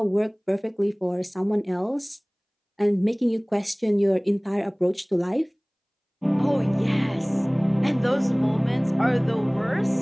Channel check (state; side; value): identical; both; correlation 1.00